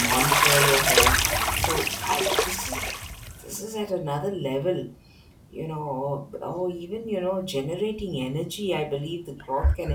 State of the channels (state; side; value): identical; both; correlation 1.00